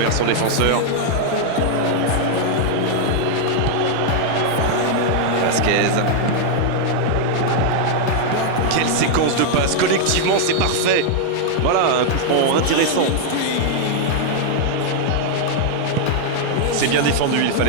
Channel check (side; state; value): both; different; correlation 0.00